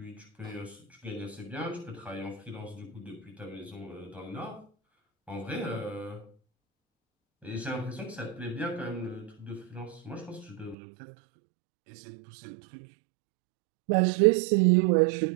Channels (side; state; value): left; drops out; at 10.8 s